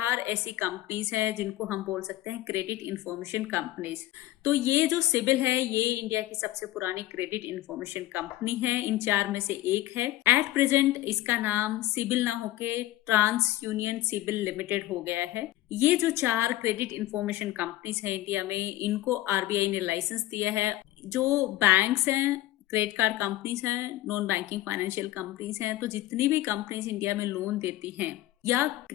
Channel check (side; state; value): right; quieter; 15.8 dB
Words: ऐसी कंपनीज हैं जिनको हम बोल सकते हैं क्रेडिट इंफॉर्मेशन कंपनीज। तो ये जो सिबिल है ये इंडिया की सबसे पुरानी क्रेडिट इंफॉर्मेशन कंपनी है। इन 4 में से एक है। एट प्रेजेंट इसका नाम सिबिल ना होके ट्रांस यूनियन सिबिल लिमिटेड हो गया है। ये जो 4 क्रेडिट इंफॉर्मेशन कंपनीज है इंडिया में, इनको आरबीआई ने लाइसेंस दिया है। जो बैंक्स हैं, क्रेडिट कार्ड कंपनीज हैं, नॉन बैंकिंग फाइनेंशियल कंपनीज हैं, तो जितनी भी कंपनीज इंडिया में लोन देती हैं या